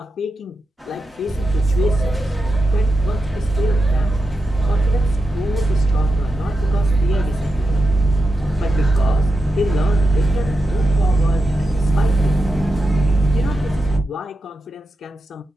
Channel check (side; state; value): both; normal; correlation 0.89